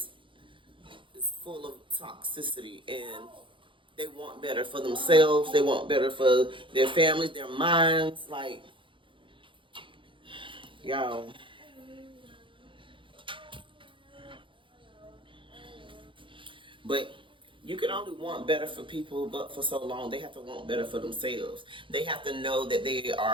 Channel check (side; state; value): left; late; 0.25 ms